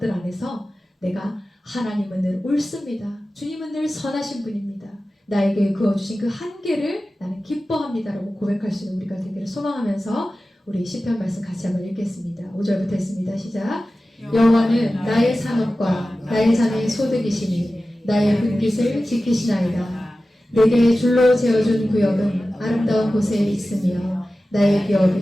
안에서 내가 하나님은 늘 옳습니다. 주님은 늘 선하신 분입니다. 나에게 그어주신 그 한계를 나는 기뻐합니다라고 고백할 수 있는 우리가 되기를 소망하면서 우리 시편 말씀 같이 한번 읽겠습니다. 5절부터 했습니다. 시작. 여호와는 나의 산업과 나의 자녀의 소득이시니 나의 분깃을 지키시나이다. 내게 줄로 재어준 구역은 아름다운 곳에 있으며 나의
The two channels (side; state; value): both; normal; correlation 0.95